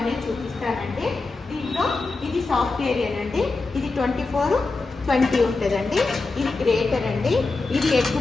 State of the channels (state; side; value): quieter; right; 3.7 dB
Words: చూపిస్తానండి. దీంట్లో ఇది సాఫ్ట్వేర్ అండి, ఇది 24/20 ఉంటుందండి. ఇది గ్రేటర్ అండి, ఇది ఎగ్